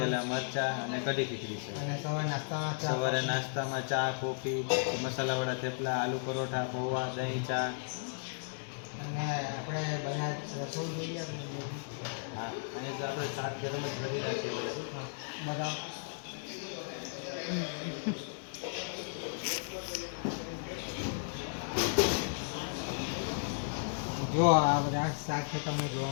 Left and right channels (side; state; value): right; silent; digital silence